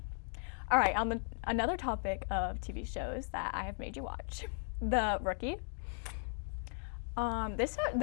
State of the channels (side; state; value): right; silent; 53 dB below the other